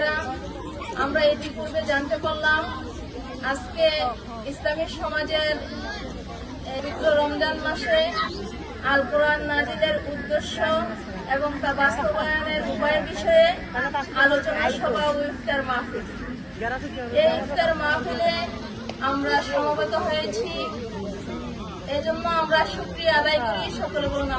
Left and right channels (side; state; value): both; identical; correlation 1.00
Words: আমরা ইতিপূর্বে জানতে পারলাম আজকে ইসলামী সমাজের পবিত্র রমজান মাসে আল কোরআন নাজিলের উদ্দেশ্য এবং তা বাস্তবায়নের উপায়ের বিষয়ে আলোচনা সভা ও ইফতার মাহফিল। এই ইফতার মাহফিলে আমরা সমবেত হয়েছি, এজন্য আমরা শুকরিয়া আদায় করি। সকলে বলুন